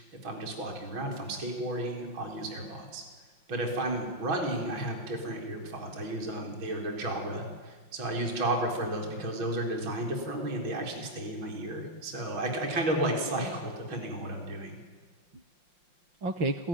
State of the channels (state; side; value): late; left; 5.7 ms